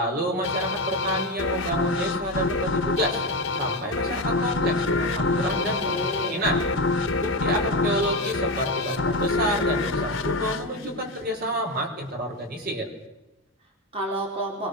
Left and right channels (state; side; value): normal; both; correlation 0.14